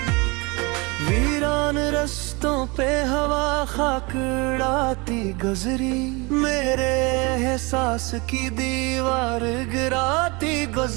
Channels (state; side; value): quieter; left; 27.2 dB